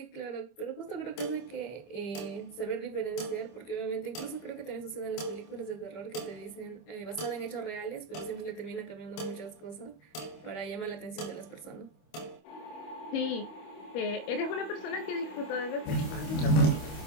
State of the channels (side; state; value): right; late; 25 ms